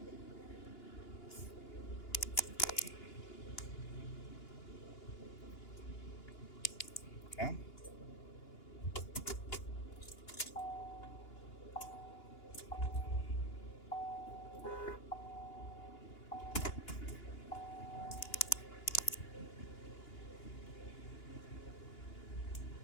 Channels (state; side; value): late; right; 2.9 ms